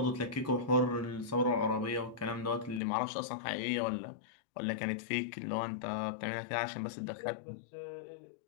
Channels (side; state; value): right; drops out; at 2.8 s